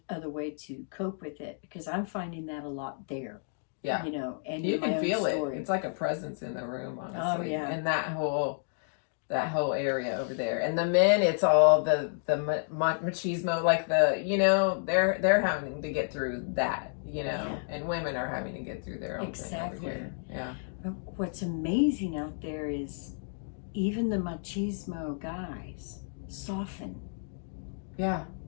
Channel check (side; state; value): right; silent; digital silence